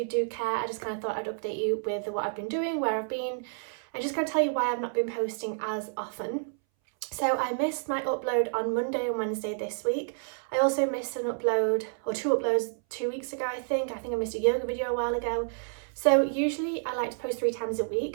do care, I just kind of thought I'd update you with what I've been doing, where I've been, and just kind of tell you why I've not been posting as often. So I missed my upload on Monday and Wednesday this week. I also missed an upload, or two uploads 2 weeks ago, I think. I missed a yoga video a while ago. So usually I like to post 3 times a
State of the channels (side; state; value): left; silent; 58 dB below the other